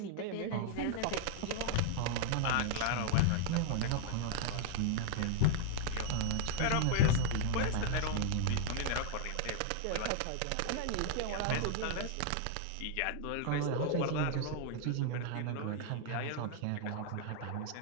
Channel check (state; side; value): different; both; correlation -0.01